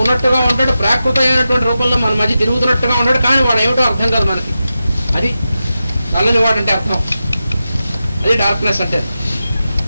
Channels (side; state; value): both; inverted; correlation -0.91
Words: ఉంటాడు, ప్రాకృతమైనటువంటి రూపంలో మన మధ్య తిరుగుతున్నట్టుగా ఉంటాడు. కానీ వాడు ఏమిటో అర్థం కాదు మనకి. అది నల్లని వాడు అంటే అర్థం. అది డార్క్నెస్ అంటే.